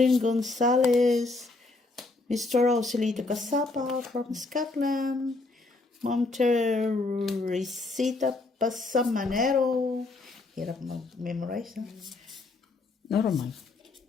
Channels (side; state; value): right; quieter; 3.3 dB